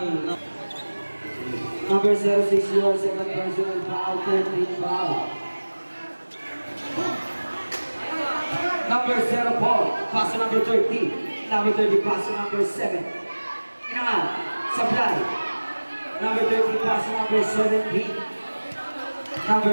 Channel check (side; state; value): both; inverted; correlation -1.00